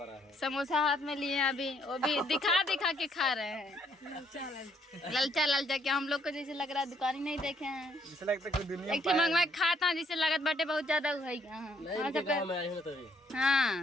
है, समोसा हाथ में लिए हैं अभी, वो भी दिखा दिखा के खा रहे हैं। ललचा ललचा के हम लोग को जैसे लग रहा है दुकान ही नहीं देखे हैं। जैसे लगता है दुनिया एक मंगवा खाता जिससे लागत बाटे बहुत ज्यादा हुई।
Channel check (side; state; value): both; normal; correlation 0.69